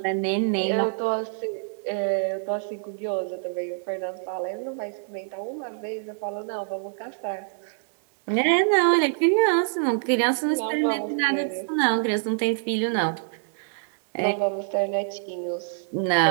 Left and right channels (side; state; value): left; silent; digital silence